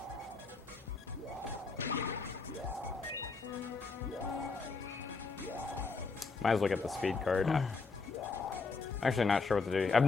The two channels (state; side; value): quieter; right; 4.4 dB